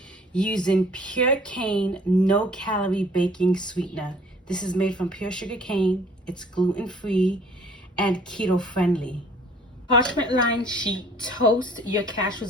using pure cane, no calorie baking sweetener. This is made from pure sugar cane. It's gluten-free and keto friendly. Parchment lined sheet, toast your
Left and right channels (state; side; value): normal; both; correlation 0.54